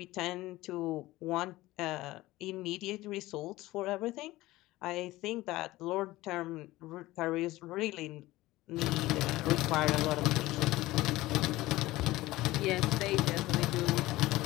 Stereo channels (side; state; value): right; quieter; 18.1 dB